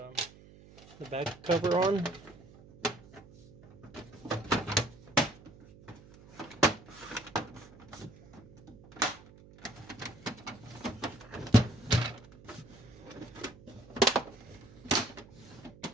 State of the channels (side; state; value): right; noise; hum, 21 dB below the sound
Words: the back cover on.